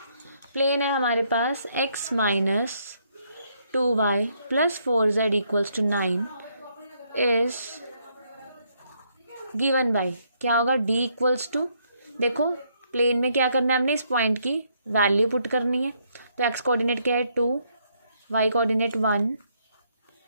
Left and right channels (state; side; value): inverted; both; correlation -0.72